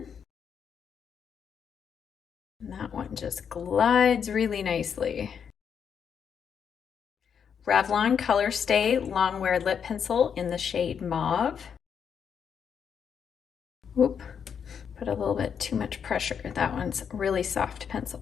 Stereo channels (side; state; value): right; quieter; 7.3 dB